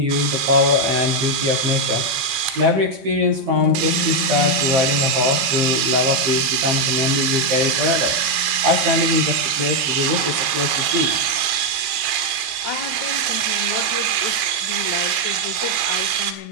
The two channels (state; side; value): late; left; 15 ms